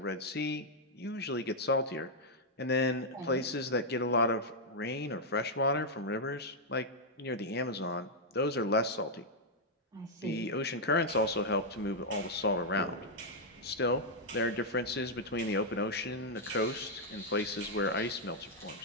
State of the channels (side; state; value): both; normal; correlation -0.03